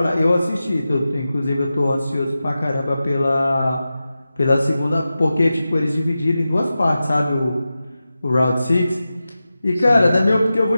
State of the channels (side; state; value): both; inverted; correlation -0.93